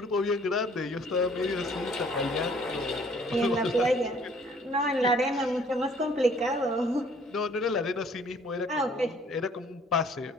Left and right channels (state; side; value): normal; both; correlation 0.58